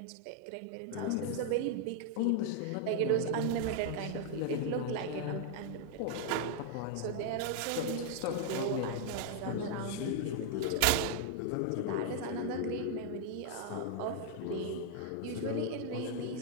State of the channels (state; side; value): different; both; correlation -0.01